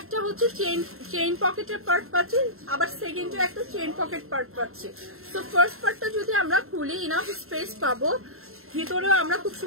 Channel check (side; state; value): left; late; 0.62 ms